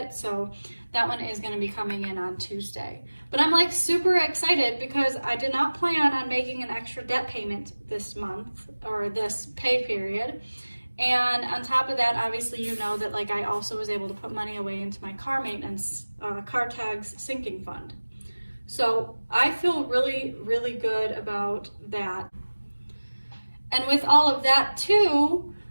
so that one is going to be coming in on Tuesday. But I'm like super excited because I did not plan on making an extra debt payment this month or this pay period. And on top of that, obviously you know that like I also was able to put money away into my car maintenance, car tags sinking fund. So I feel really, really good about that. And with all of that too,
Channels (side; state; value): both; inverted; correlation -1.00